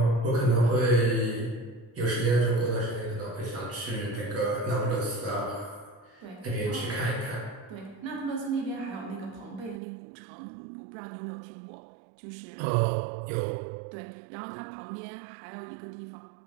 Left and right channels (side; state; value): left; drops out; at 9.8 s